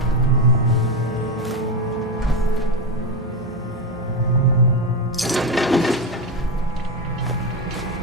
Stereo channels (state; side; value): normal; both; correlation 0.13